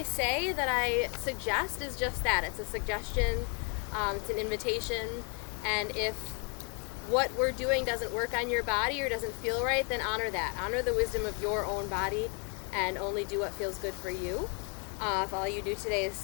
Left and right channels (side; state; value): right; quieter; 36.4 dB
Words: say that I suggest is just that. It's a suggestion, it's an invitation, and if what we're doing doesn't work on your body or doesn't feel right, then honor that. Honor the wisdom of your own body and only do what feels good for you. If all you do today is